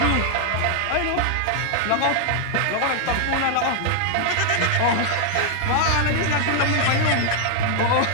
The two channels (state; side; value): different; both; correlation 0.00